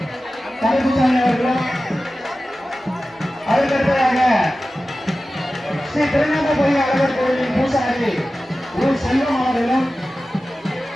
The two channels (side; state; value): both; normal; correlation 0.95